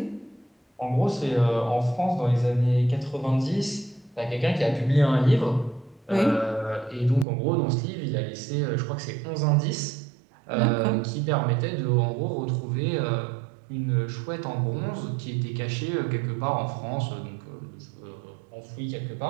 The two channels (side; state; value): left; drops out; at 7.2 s